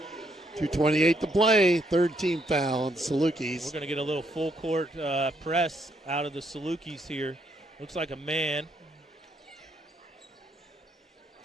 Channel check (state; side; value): normal; both; correlation 0.73